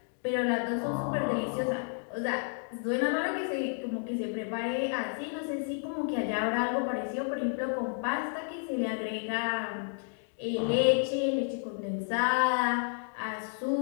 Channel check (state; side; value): silent; right; 57 dB below the other